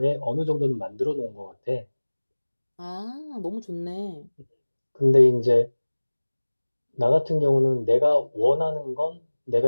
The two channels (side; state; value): both; inverted; correlation -1.00